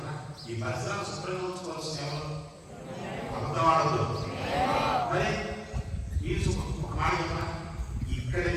ఈ పరిసరాలు శుభ్రంగా ఉంచుకోవాల్సిన ఎవరు? అబద్ధవాడదు. మరి మీరు ఒక మాట చెప్పిన ఇక్కడ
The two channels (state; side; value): identical; both; correlation 1.00